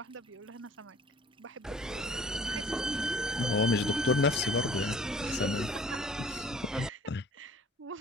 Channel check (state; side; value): normal; both; correlation 0.52